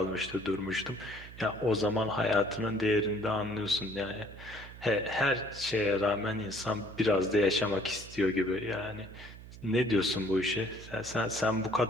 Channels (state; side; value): noise; right; hum, 16 dB below the sound